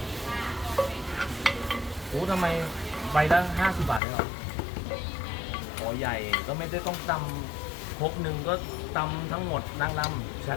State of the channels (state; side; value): drops out; right; at 4.0 s